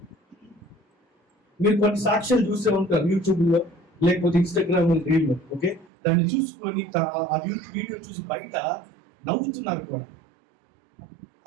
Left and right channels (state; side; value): drops out; left; at 5.9 s